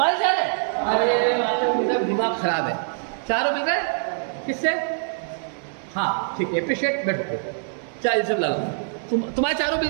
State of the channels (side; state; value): left; silent; 63 dB below the other